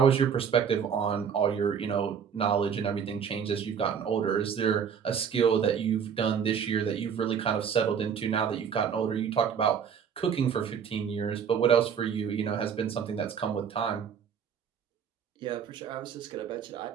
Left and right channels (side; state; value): left; quieter; 7.4 dB